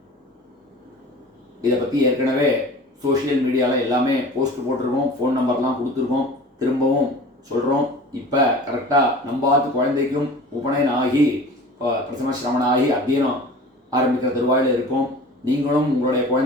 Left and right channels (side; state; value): both; normal; correlation 0.41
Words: இதை பற்றி ஏற்கனவே சோஷியல் மீடியாவில் எல்லாமே போஸ்ட் போட்டிருக்கோம், ஃபோன் நம்பர்லாம் கொடுத்துருக்கோம். திரும்பவும் சொல்கிறோம். இப்போ கரெக்டாக நம்பாத்து குழந்தைக்கும் உபநயனம் ஆகி பிரசம சிரமணம் ஆகி அத்தியனம் ஆரம்பிக்கிற தருவாயில் இருக்கும். நீங்களும் உங்களுடைய